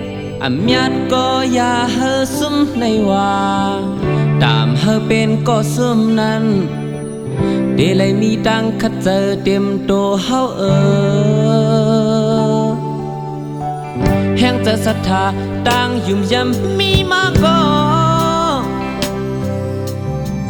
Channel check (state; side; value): identical; both; correlation 1.00